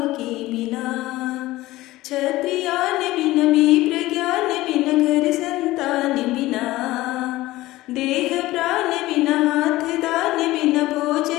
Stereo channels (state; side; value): quieter; right; 17.6 dB